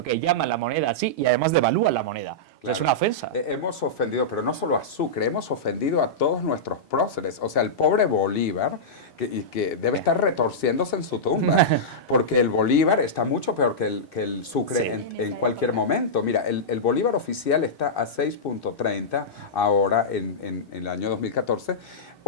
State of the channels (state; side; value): normal; both; correlation -0.12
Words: que llaman la moneda así y además devalúan la moneda. Claro. O sea, es una ofensa. Hemos ofendido, pero no solo a Sucre, hemos ofendido a todos nuestros próceres. O sea, el pobre Bolívar, que debe estar retorciéndose en su tumba, porque el Bolívar está mucho peor que el Sucre en cualquier momento. Mira, el Bolívar oficial está a 6.30 ahora en el año 2014,